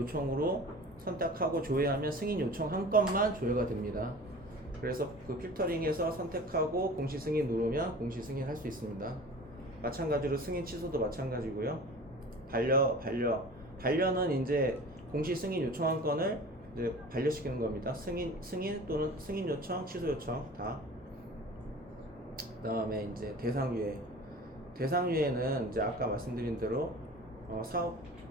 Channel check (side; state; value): both; normal; correlation 0.40